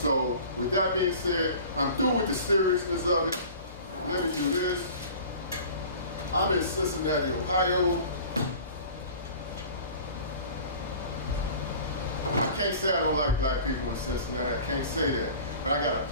with that being said, I'm through with the seriousness of it. Let me do this. I'm in Cincinnati, Ohio. I can't say I don't like black people in Cincinnati. I can't say that. But I got a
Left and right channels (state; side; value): inverted; both; correlation -0.42